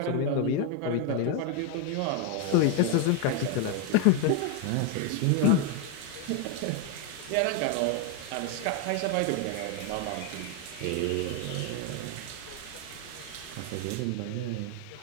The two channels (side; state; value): both; different; correlation 0.01